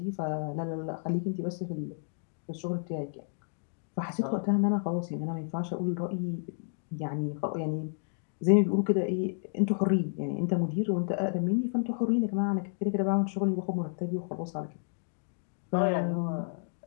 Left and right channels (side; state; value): right; silent; digital silence